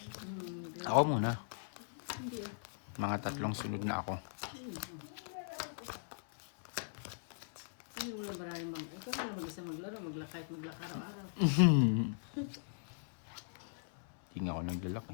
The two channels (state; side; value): silent; right; 52 dB below the other